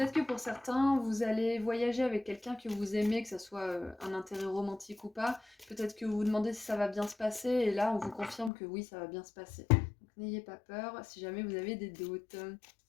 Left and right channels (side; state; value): right; drops out; at 8.5 s